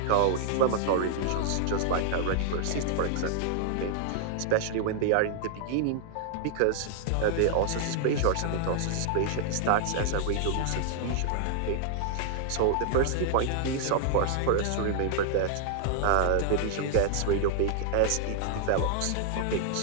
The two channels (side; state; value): both; different; correlation -0.01